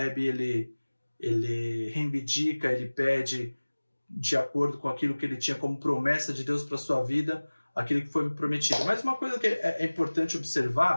ele reivindica, ele pede, de acordo com aquilo que ele tinha como promessa de Deus para sua vida, aquilo que foi prometido. Mas uma coisa que é importante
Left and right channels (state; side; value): inverted; both; correlation -1.00